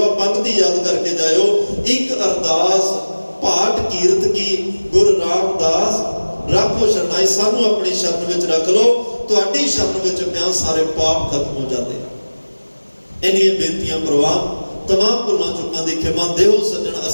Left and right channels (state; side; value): inverted; both; correlation -1.00